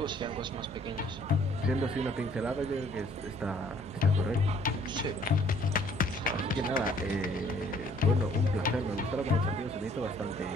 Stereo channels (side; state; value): both; normal; correlation 0.59